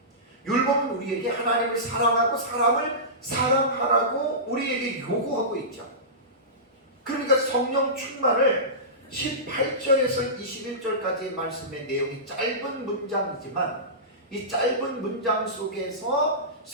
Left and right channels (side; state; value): both; normal; correlation -0.20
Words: 율법은 우리에게 하나님을 사랑하고 사람을 사랑하라고 우리에게 요구하고 있죠. 그러니까 성령 충만을 18절에서 21절까지의 말씀의 내용이 짧은 문장이지만 이 짧은 문장 속에서